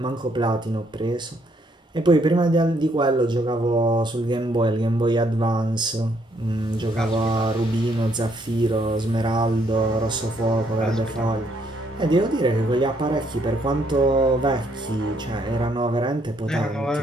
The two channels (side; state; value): both; normal; correlation 0.70